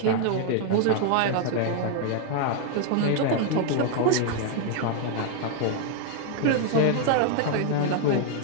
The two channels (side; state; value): both; different; correlation 0.00